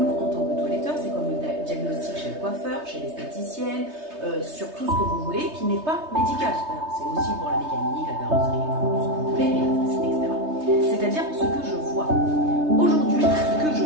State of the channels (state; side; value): late; left; 3.2 ms